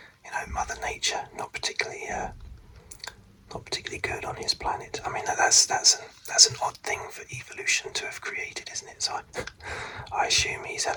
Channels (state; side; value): identical; both; correlation 1.00